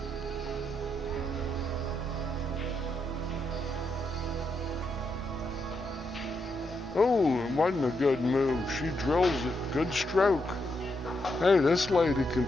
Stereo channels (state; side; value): normal; both; correlation 0.81